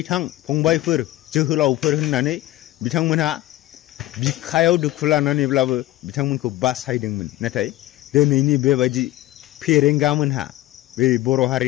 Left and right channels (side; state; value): right; quieter; 16.2 dB